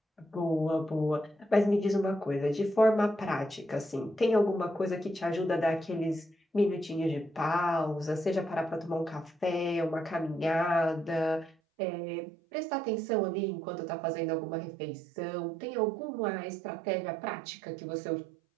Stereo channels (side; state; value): left; drops out; at 11.6 s